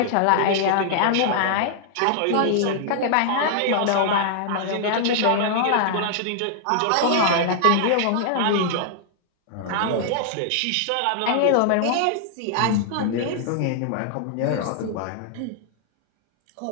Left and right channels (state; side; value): different; both; correlation -0.01